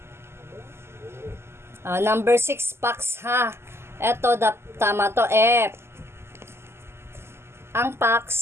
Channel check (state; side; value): late; left; 0.12 ms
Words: Number 6 packs ha. Eto, tama to, F. Ang